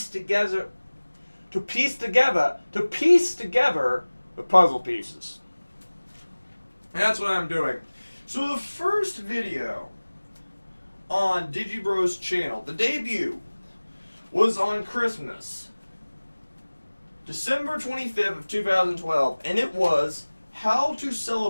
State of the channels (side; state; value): both; inverted; correlation -1.00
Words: together the puzzle pieces. And that's what I'm doing. So the first video on DigiBro's channel, the debut, was on Christmas, December 25th of 2012, and it was How to